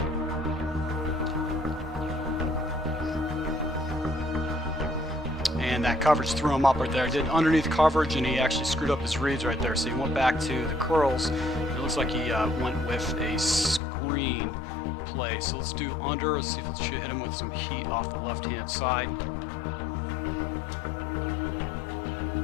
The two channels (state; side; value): drops out; right; at 13.8 s